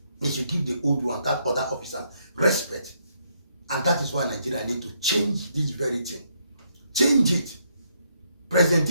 They should give the old one, that other officer, respect. And that is why Nigeria need to change this very thing. Change it. President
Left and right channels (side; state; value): both; inverted; correlation -0.74